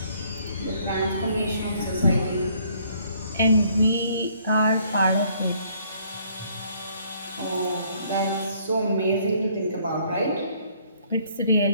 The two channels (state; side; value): inverted; both; correlation -0.63